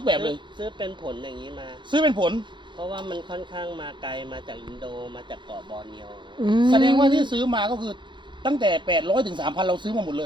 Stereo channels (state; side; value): late; left; 0.23 ms